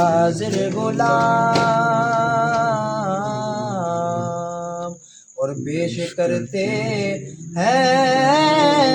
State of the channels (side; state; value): both; identical; correlation 1.00